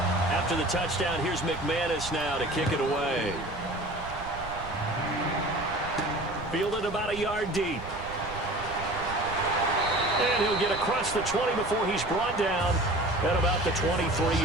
After the touchdown, here's McManus now to kick it away. Fielded about a yard deep. And he'll get across the 20 before he's brought down at about the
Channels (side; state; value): right; noise; rumble, 13 dB below the sound